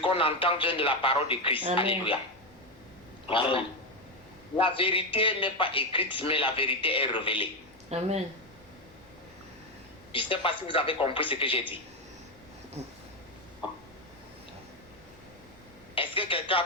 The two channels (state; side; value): normal; both; correlation 0.09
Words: entend vient de la parole de Christ. Amen. Alléluia. Amen. La vérité n'est pas écrite, mais la vérité est révélée. Amen. Je ne sais pas si vous avez compris ce que j'ai dit. Est-ce que quelqu'un a